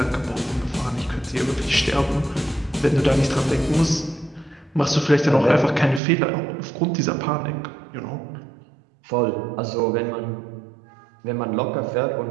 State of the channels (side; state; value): left; drops out; at 6.0 s